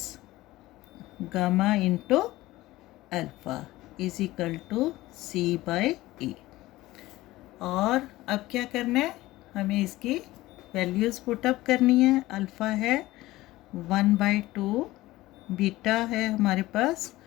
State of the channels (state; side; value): quieter; right; 17.7 dB